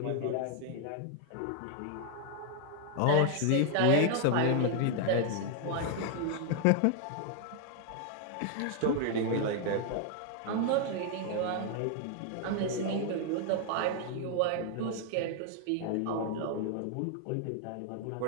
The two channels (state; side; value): different; both; correlation 0.00